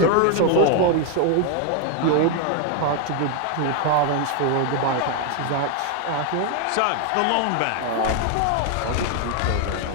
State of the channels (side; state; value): both; different; correlation 0.01